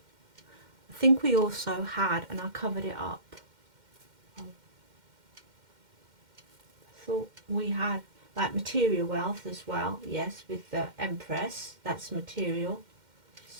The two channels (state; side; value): late; left; 2.1 ms